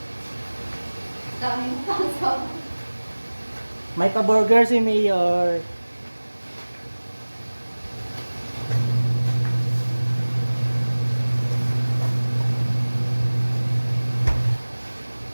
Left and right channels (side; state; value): both; inverted; correlation -1.00